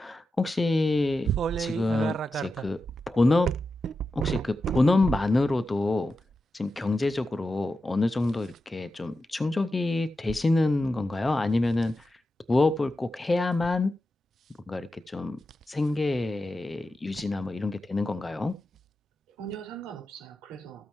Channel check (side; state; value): both; normal; correlation 0.90